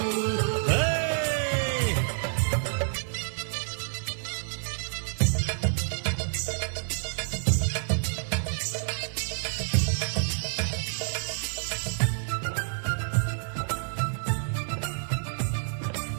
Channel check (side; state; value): left; silent; 59 dB below the other